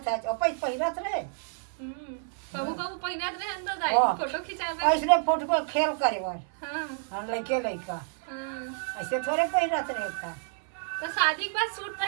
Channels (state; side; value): silent; left; 58 dB below the other